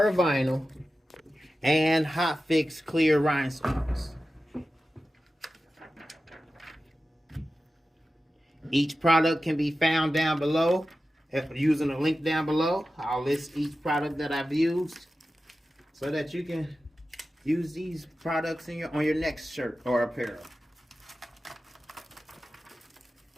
vinyl and Hotfix clear rhinestones. Each product can be found down below using a link down below. I'll list each product that I've used so that you can use these products in on your next shirt or apparel.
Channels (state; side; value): normal; both; correlation 0.93